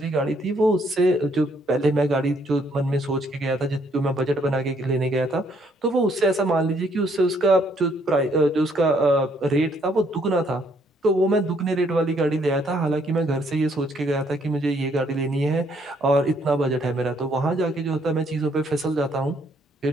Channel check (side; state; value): both; normal; correlation 0.68